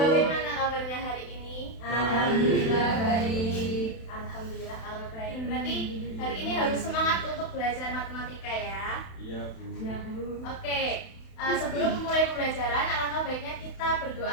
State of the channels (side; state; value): right; late; 31 ms